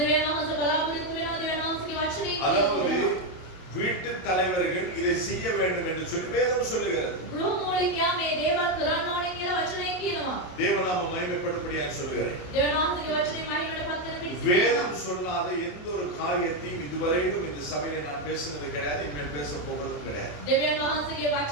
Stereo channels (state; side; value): late; right; 27 ms